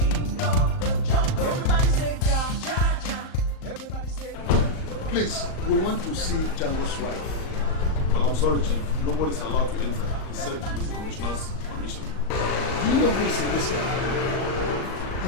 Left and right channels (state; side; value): late; right; 38 ms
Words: of Please, we want to see Jhango's wife. Well, I'm sorry, Chief. Nobody's allowed to enter except with the Commissioner's permission. Do you know who is in this town?